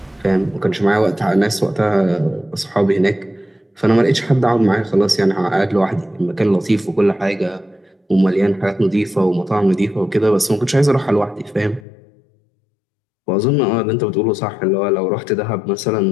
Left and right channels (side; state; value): right; drops out; at 11.9 s